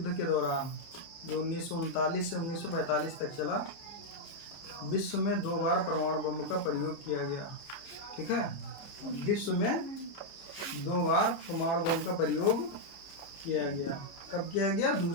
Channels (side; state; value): right; late; 29 ms